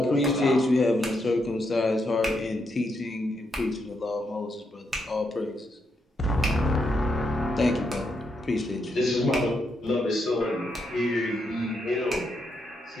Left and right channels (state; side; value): normal; both; correlation 0.80